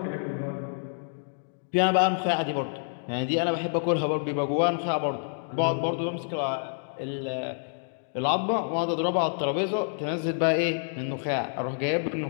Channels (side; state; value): right; silent; digital silence